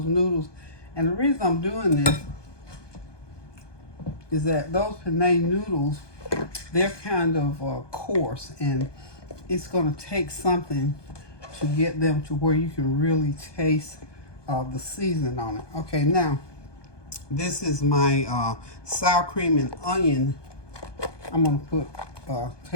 noodles? And the reason I'm doing this is that those penne noodles, they're kind of coarse, and it's going to take something to get them to where you can really taste the seasoning on it. Okay, now this is my sour cream and onion. I'm going to put a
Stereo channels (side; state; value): right; late; 1.2 ms